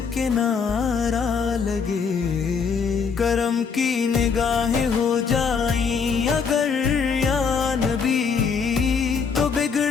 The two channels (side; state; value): right; quieter; 5.8 dB